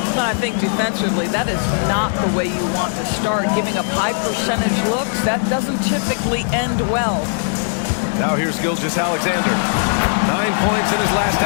I think defensively, that is not the way you want to start. Giving up high percentage looks, that doesn't typically end well. Now here's Gilgeous-Alexander. 9 points in his last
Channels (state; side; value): silent; right; digital silence